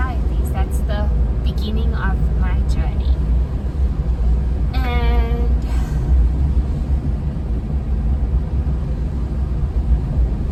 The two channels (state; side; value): identical; both; correlation 1.00